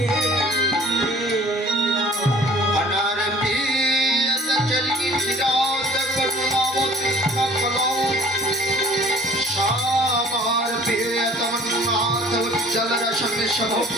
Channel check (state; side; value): normal; both; correlation 0.50